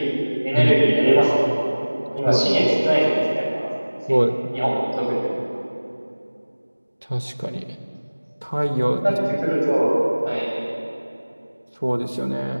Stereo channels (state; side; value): inverted; both; correlation -1.00